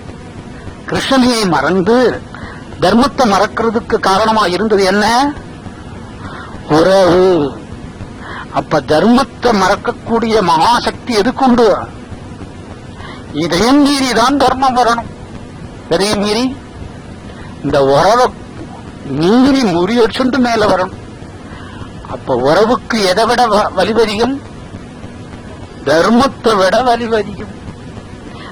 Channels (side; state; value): both; identical; correlation 1.00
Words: கிருஷ்ணனையை மறந்து தர்மத்தை மறக்கிறதுக்கு காரணமா இருந்தது என்ன? உறவு. அப்ப தர்மத்தை மறக்கக்கூடிய மகாசக்தி எதுக்குண்டு? இதையும் மீறிதான் தர்மம் வரணும். இதையும் மீறி இந்த உறவை மீறி முறியடிச்சுண்டு மேல வரணும். அப்ப உறவுக்கு எதை விட வலிவதிகம்? தர்மத்தை விட வலிவதிகம்.